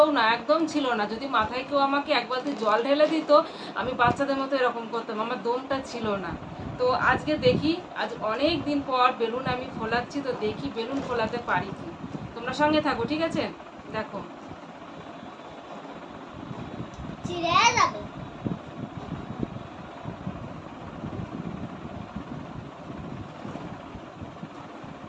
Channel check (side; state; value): both; identical; correlation 1.00